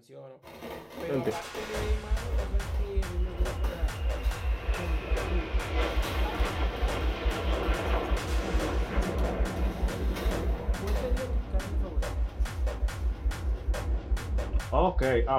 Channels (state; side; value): identical; both; correlation 1.00